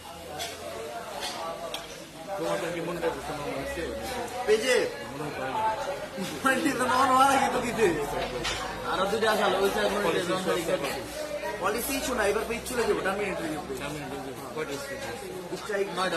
তোমাদের কি মনে হচ্ছে পেজে আরো দুটো আসালো পলিসি শোনা এবার পেজ চলে যাবো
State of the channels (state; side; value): identical; both; correlation 1.00